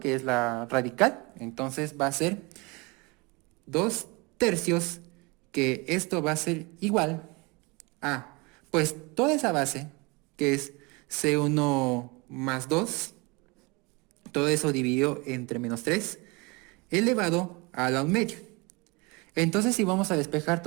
es la radical, entonces va a ser 2 tercios, que esto va a ser igual a, pues toda esa base, que es C1 más 2, todo eso dividido entre menos 3, elevado a la 1 medio. Entonces si vamos a despejar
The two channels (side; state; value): left; quieter; 27.0 dB